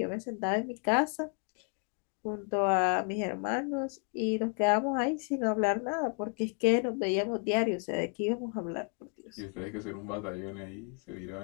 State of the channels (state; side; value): quieter; right; 38.0 dB